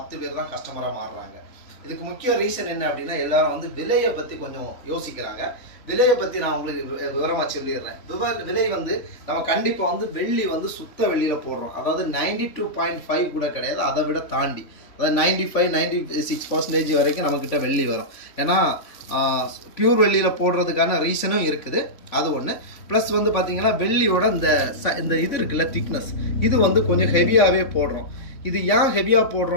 பேர் தான் கஸ்டமராக மாறுறாங்க. இதுக்கு முக்கிய ரீசன் என்ன அப்படின்னா, எல்லாரும் வந்து விலையை பற்றி கொஞ்சம் யோசிக்கிறாங்க. விலையை பற்றி நான் உங்களுக்கு விவரமாக சொல்லிடுறேன். விலை வந்து நம்ம கண்டிப்பாக வந்து வெள்ளி வந்து சுத்த வெள்ளியில் போடுறோம். அதாவது 92.5 கூட கிடையாது, அதை விட தாண்டி, அதாவது 95-96% வரைக்கும் நம்மக்கிட்ட வெள்ளி வரும். ஏன்னா பியூர் வெள்ளியில் போடுறதுக்கான ரீசனும் இருக்குது, அது ஒன்று. ப்ளஸ் வந்து பார்த்தீங்கன்னா வெள்ளியோட இந்த இது இருக்குல்ல, திக்னஸ், இது வந்து கொஞ்சம் ஹெவியாகவே போடுறோம். இது ஏன் ஹெவியாக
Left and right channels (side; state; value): right; late; 3.4 ms